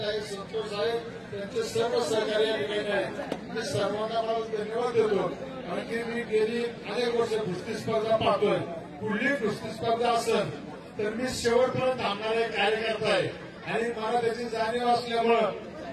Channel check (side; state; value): both; identical; correlation 1.00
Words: आहे, संतोष साहेब त्यांचे सर्व सहकारी या ठिकाणी आहेत. मी सर्वांना मला धन्यवाद देतो. कारण की मी गेली अनेक वर्ष कुस्ती स्पर्धा पाहतोय. पुढली कुस्ती स्पर्धा असेल तर मी शेवटपर्यंत थांबणारा कार्यकर्ता आहे आणि मला त्याची जाणीव असल्यामुळं